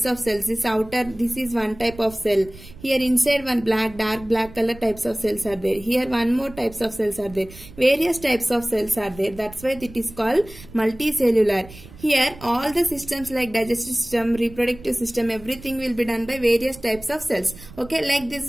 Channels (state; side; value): noise; right; rumble, 18 dB below the sound